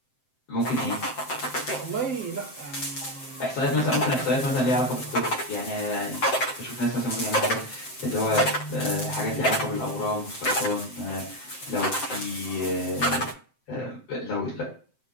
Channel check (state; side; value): late; right; 7.7 ms